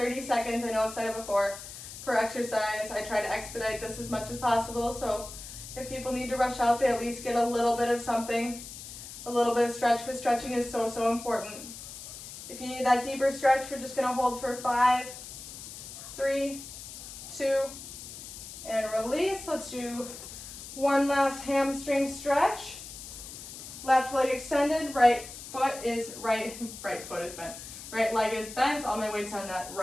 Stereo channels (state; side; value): noise; left; hiss, 12 dB below the sound